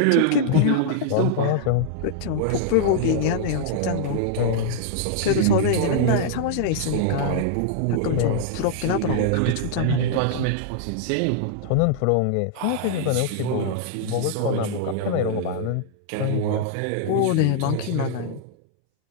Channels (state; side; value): different; both; correlation -0.01